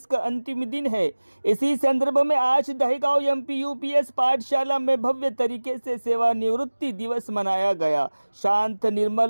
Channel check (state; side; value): inverted; both; correlation -1.00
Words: का अंतिम दिन है। इसी संदर्भ में आज दहेगांव एमपी यूपीएस पाठशाला में भव्य तरीके से सेवानिवृत्ति दिवस मनाया गया। शांत,